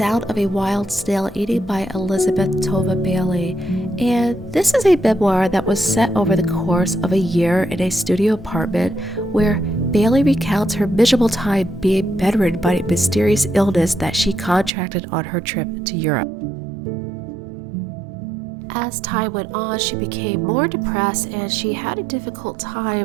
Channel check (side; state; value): left; drops out; at 14.7 s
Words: of a Wild Snail Eating by Elizabeth Tova Bailey, and this is a memoir that was set over the course of a year in a studio apartment where Bailey recounts her miserable time being bedridden by a mysterious illness that she contracted on her trip to Europe. As time went on, she became more depressed and she had a difficult